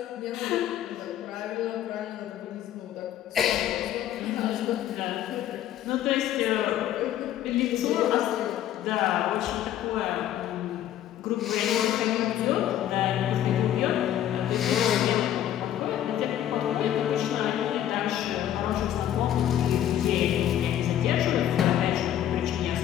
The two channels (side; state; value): right; quieter; 11.5 dB